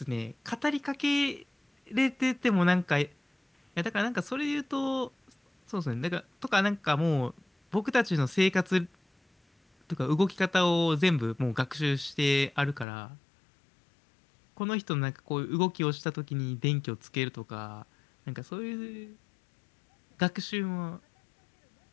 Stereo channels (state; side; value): drops out; right; at 12.9 s